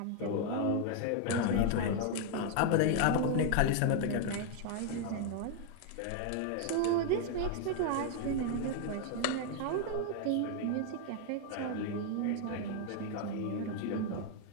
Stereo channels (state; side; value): different; both; correlation 0.00